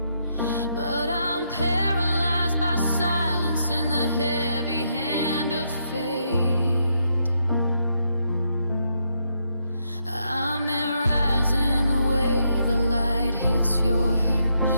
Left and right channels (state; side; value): inverted; both; correlation -0.78